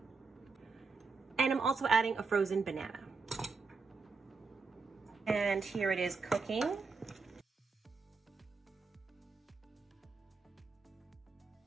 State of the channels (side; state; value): left; quieter; 4.4 dB